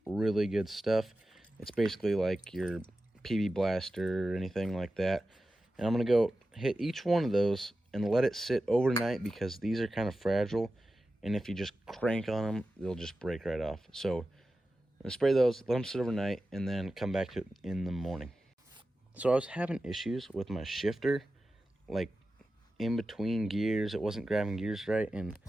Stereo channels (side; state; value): both; normal; correlation 0.93